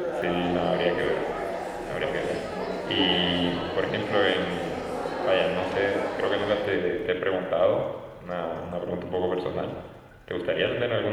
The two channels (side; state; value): both; identical; correlation 1.00